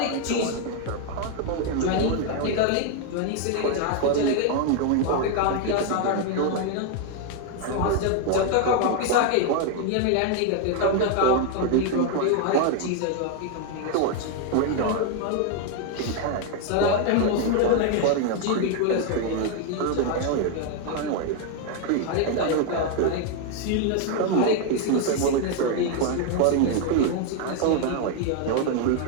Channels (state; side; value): different; both; correlation 0.00